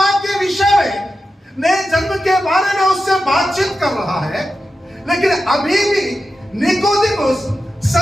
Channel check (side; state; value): both; normal; correlation 0.91